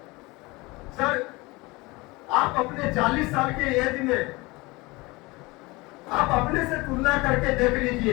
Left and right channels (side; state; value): right; quieter; 23.3 dB